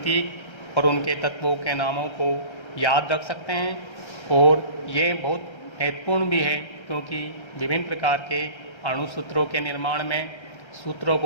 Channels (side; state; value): right; late; 1.3 ms